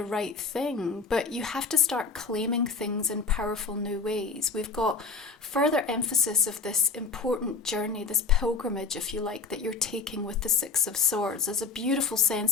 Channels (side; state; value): right; quieter; 4.6 dB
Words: right thing? But you have to start claiming things in powerful new ways. We've got further emphasis of this important journey, this pilgrimage, if you like, that you're taking with the Six of Swords. There's a beautiful